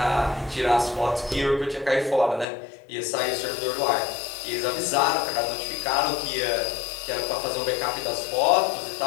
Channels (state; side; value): drops out; right; at 2.5 s